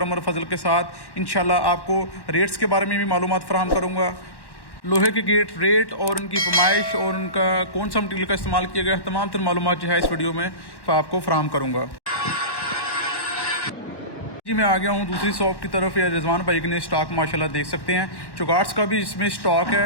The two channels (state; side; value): late; right; 1.1 ms